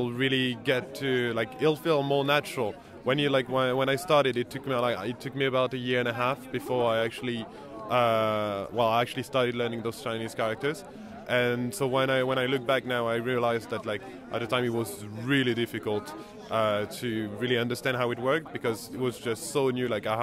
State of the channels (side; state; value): both; identical; correlation 1.00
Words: really get to it'll feel more natural. When you when I started, it took me about 1.5 years before I actually started learning those Chinese characters. And so when I look back now, I realized that at the time it was really difficult to really understand how it worked, because it was just so new. I